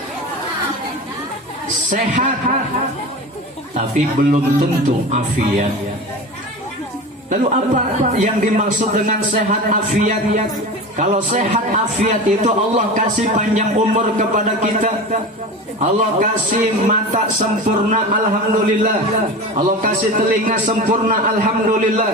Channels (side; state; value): both; normal; correlation 0.30